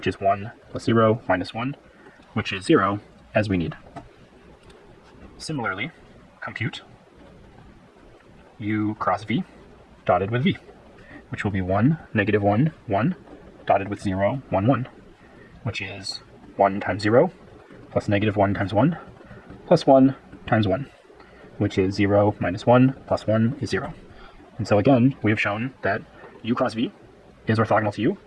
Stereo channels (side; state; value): both; identical; correlation 1.00